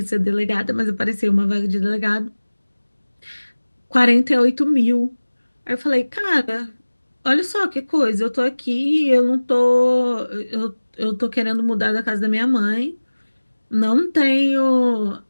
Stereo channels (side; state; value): both; inverted; correlation -1.00